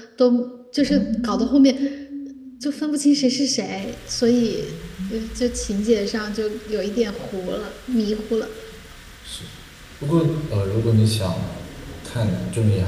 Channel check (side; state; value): both; identical; correlation 1.00